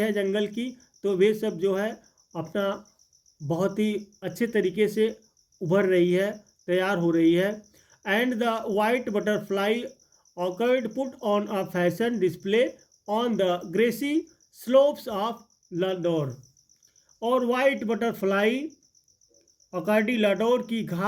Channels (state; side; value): identical; both; correlation 1.00